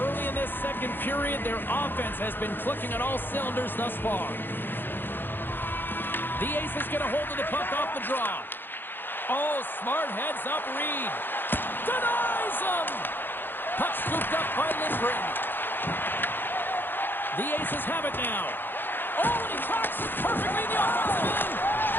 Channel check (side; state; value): right; late; 0.097 ms